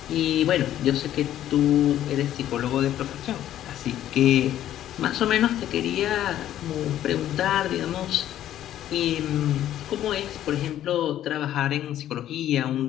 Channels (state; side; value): quieter; right; 12.0 dB